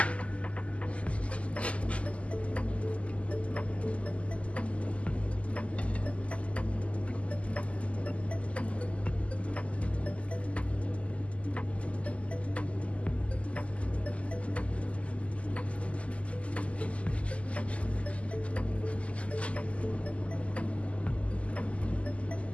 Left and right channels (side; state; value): right; late; 0.061 ms